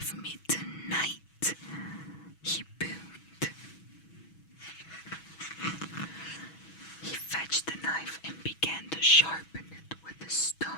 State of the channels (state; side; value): late; right; 6.2 ms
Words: me tonight," he boomed. He fetched a knife and began to sharpen it with a